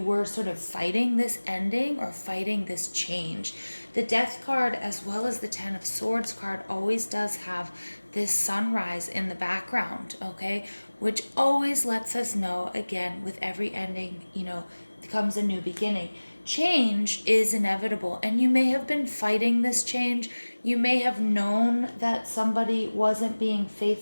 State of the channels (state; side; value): inverted; both; correlation -1.00